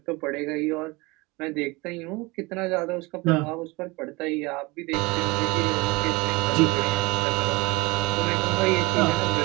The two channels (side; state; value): left; quieter; 24.3 dB